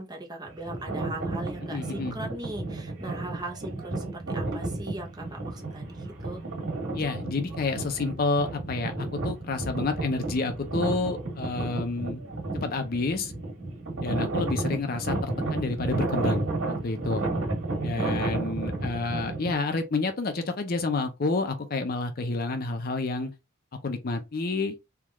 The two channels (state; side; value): normal; both; correlation 0.46